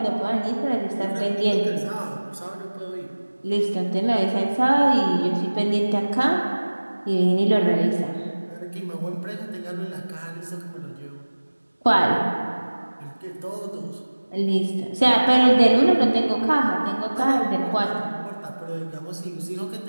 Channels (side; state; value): both; inverted; correlation -1.00